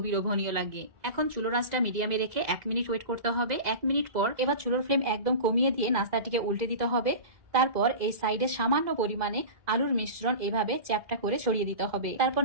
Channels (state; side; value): late; left; 2.0 ms